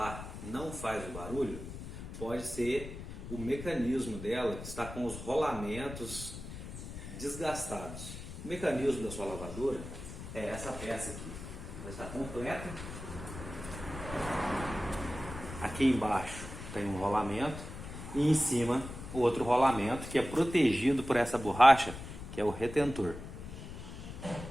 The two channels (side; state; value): left; noise; rumble, 10 dB below the sound